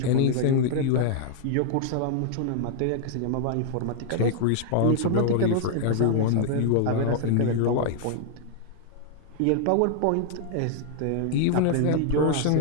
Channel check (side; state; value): both; different; correlation -0.01